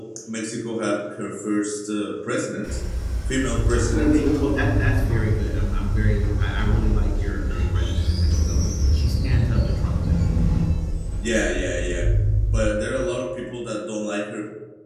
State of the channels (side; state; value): both; identical; correlation 1.00